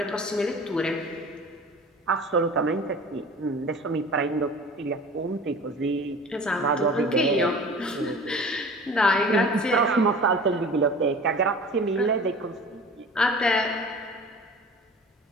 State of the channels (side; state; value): both; normal; correlation 0.41